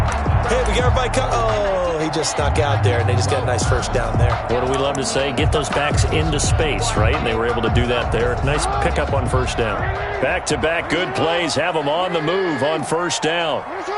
hey, we got everybody covered. Oh, he just snuck out there, and they just got a nice first down there. What do we love to say? Get those backs into space, right? And they were able to do that there. Nice pickup on first down. Back-to-back good plays have them on the move on first down.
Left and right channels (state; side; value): identical; both; correlation 1.00